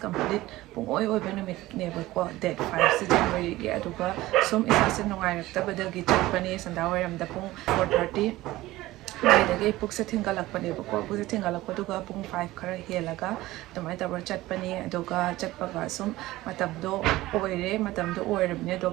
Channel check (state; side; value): quieter; left; 17.5 dB